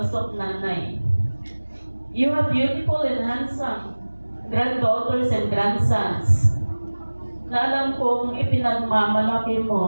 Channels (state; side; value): inverted; both; correlation -1.00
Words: of Nanay. You have beautiful and handsome granddaughters and grandsons na alam kong ipinagmamalaki